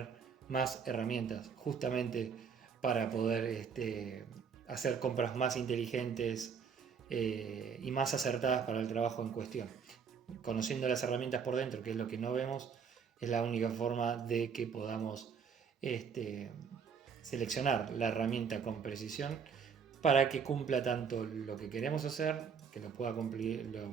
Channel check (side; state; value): left; quieter; 6.5 dB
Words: más herramientas, justamente para poder hacer compras más inteligentes y más acertadas para el trabajo en cuestión. Conociendo las herramientas por dentro, que es lo que no vemos, es la única forma de que podamos seleccionar la herramienta con precisión para que cumpla tanto lo que queremos hacer, que lo pueda cumplir